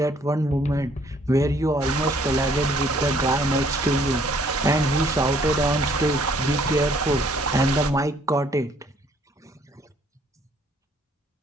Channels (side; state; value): both; normal; correlation 0.62